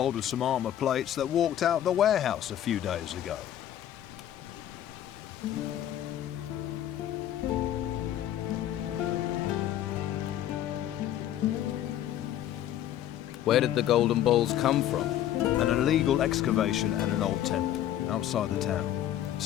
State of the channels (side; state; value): right; quieter; 11.7 dB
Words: of some armor plates that walked out the warehouse a few days ago. Where did the golden balls come from? An illegal excavation at an old temple outside the town.